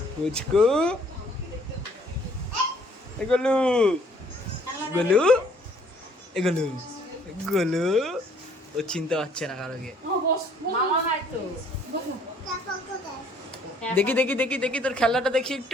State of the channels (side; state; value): both; normal; correlation 0.60